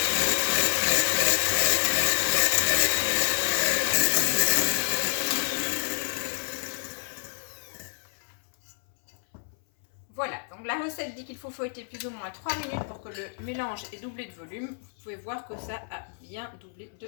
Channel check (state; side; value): silent; right; 59 dB below the other